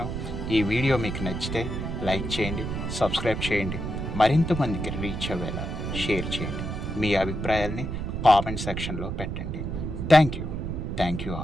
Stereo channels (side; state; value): right; noise; rumble, 4 dB below the sound